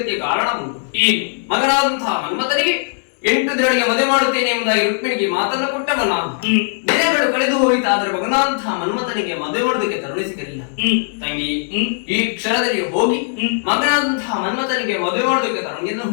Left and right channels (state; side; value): silent; right; 62 dB below the other